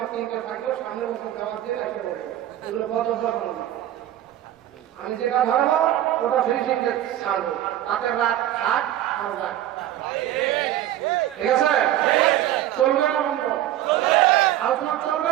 3টে থাকলেও সামনের বছর দেওয়ার দিয়ে একটা বলবো, এগুলো বদল না। আমি যেটা ধরবো ওটা ফিনিশিং ছাড়বো, তাতে রাত থাক আর রাত, ঠিক আছে? চলবে না বন্ধ? আলোচনা চলবে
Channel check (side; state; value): left; quieter; 12.9 dB